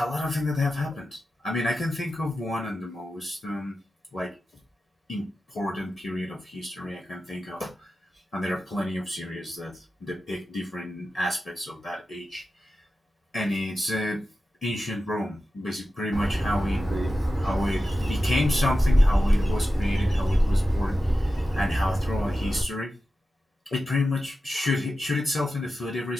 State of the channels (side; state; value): both; normal; correlation 0.92